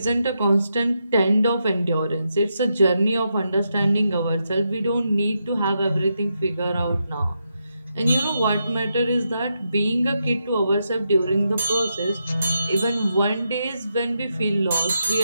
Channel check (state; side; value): inverted; both; correlation -0.84